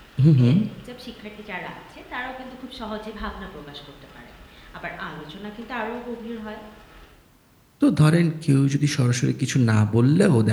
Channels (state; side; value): identical; both; correlation 1.00